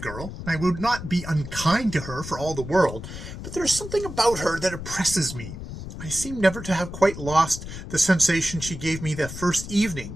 and I would not be unkind to her for all the world, but there is something about her that oppresses me. I seem never to have quite lost the sensation she gave me the first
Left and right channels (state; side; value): noise; left; rumble, 10 dB below the sound